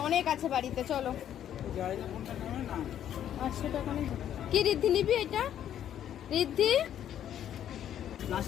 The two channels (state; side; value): quieter; right; 10.5 dB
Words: অনেক আছে বাড়িতে, চলো। 800 টাকা নেই কি রিদ্ধি নিবি? এটা রিদ্ধি